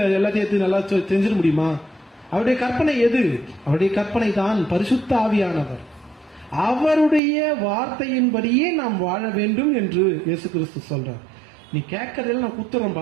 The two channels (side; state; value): left; drops out; at 7.2 s